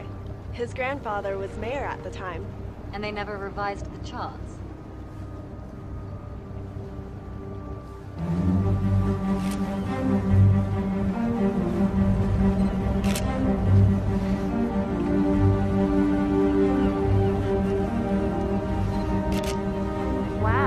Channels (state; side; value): identical; both; correlation 1.00